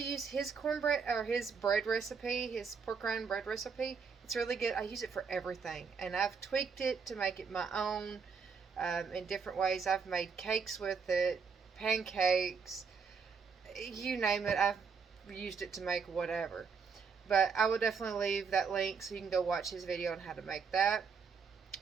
his cornbread or his bread recipe, his pork rind bread recipe. It's really good. I use it for everything, and I've tweaked it to make it my own in different ways. I've made cakes with it, pancakes, you name it. I've used it to make whatever. But I will definitely leave that link so you can go watch his video on how to make that.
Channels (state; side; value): quieter; left; 5.7 dB